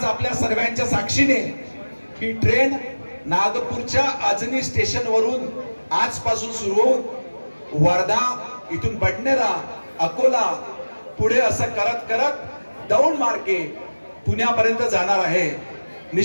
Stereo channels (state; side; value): inverted; both; correlation -1.00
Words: आपल्या सर्वांच्या साक्षीने ही ट्रेन नागपूरच्या अजनी स्टेशन वरून आजपासून सुरू होऊन वर्धा, इथून बडनेरा, अकोला, पुढे असं करत करत दौंड मार्गे पुण्यापर्यंत जाणार आहे।